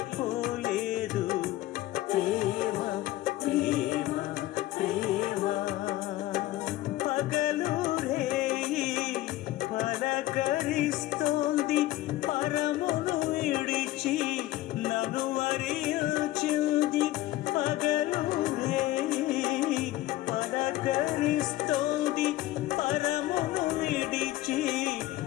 ప్రేమ ప్రేమ ప్రేమ పగలు రేయి పలకరిస్తోంది, పరమును విడిచి నన్ను వరించింది. పగలు రేయి పలకరిస్తోంది, పరమును విడిచి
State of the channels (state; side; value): quieter; right; 16.1 dB